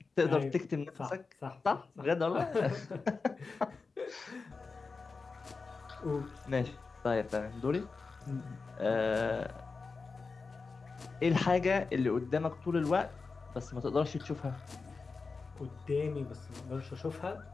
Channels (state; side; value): quieter; right; 4.4 dB